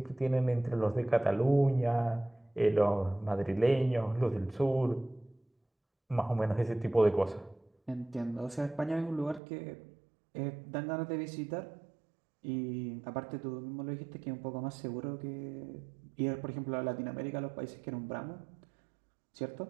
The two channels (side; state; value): left; drops out; at 9.4 s